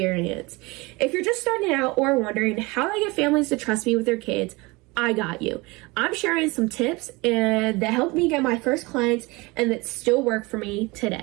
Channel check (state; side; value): quieter; left; 24.3 dB